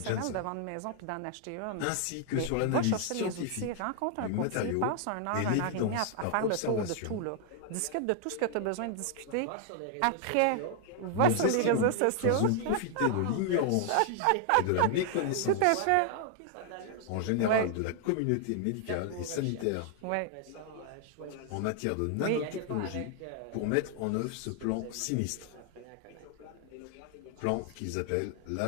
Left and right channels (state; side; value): different; both; correlation 0.00